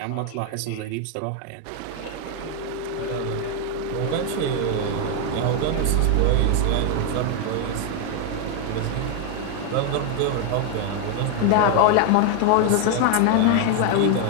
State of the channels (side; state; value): both; different; correlation 0.01